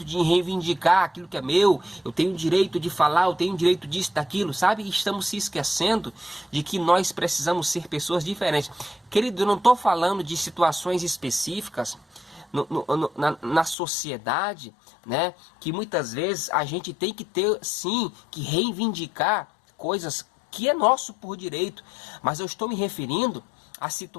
de reivindicar aquilo que é meu, eu tenho o direito de falar, eu tenho o direito disso, daquilo, sabe? E estamos se esquecendo de que nós precisamos ser pessoas diferentes. Querido, eu não estou falando de situações específicas na sociedade, né? Que muitas vezes a gente tem que ter, sim, que reivindicar coisas que é nosso por direito, mas eu estou me referindo a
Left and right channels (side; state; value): right; drops out; at 13.8 s